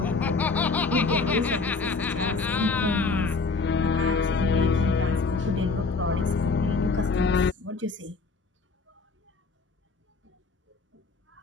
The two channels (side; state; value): right; quieter; 4.1 dB